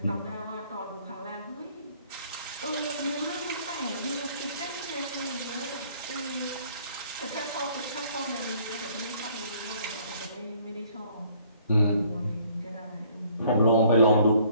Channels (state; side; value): inverted; both; correlation -0.60